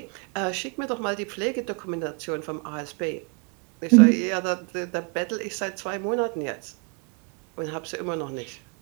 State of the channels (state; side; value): quieter; left; 34.3 dB